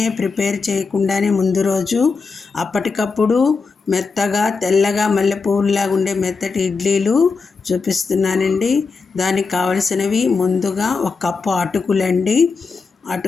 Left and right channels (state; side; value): quieter; right; 4.6 dB